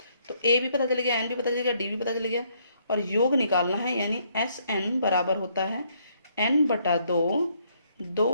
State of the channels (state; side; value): inverted; both; correlation -0.70